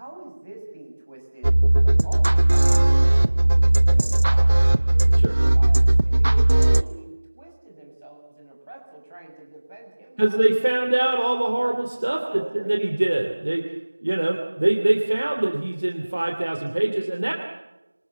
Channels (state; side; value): inverted; both; correlation -1.00